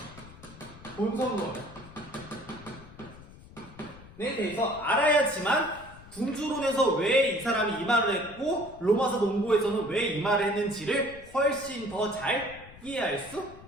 본성론에 대해서 알아야지만 궁주론에서 왜 이 사람이 이 말을 했고 로마서 논고에서는 왜 이 말을 했는지를 훨씬 더 잘 이해할 수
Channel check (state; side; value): noise; left; rumble, 19 dB below the sound